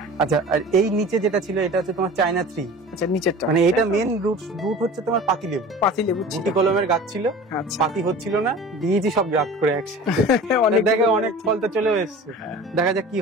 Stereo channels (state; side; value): normal; both; correlation 0.39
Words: আচ্ছা, আর এই নিচে যেটা ছিল এটা হচ্ছে তোমার চায়না 3। আচ্ছা নিচেরটা মানে এটা মেন রুট হচ্ছে তোমার পাতি লেবু। পাতি লেবু ছিল। গুটি কলমের গাছ ছিল, আচ্ছা পাতি হচ্ছিল না, দিয়েছি সব গাছ করে একসাথে। অনেক দেখে অনেক ফল তো চলেও এসছে, দেখা যাক কি